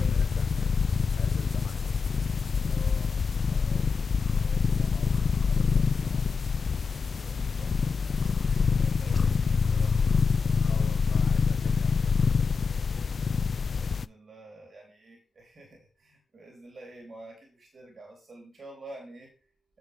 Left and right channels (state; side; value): quieter; right; 5.1 dB